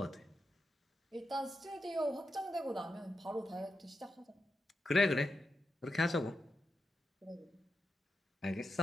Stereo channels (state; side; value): normal; both; correlation 0.87